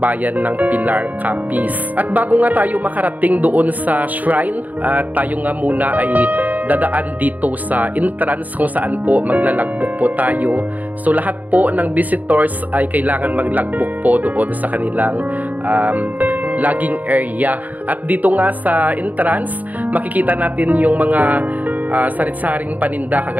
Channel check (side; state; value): left; late; 0.078 ms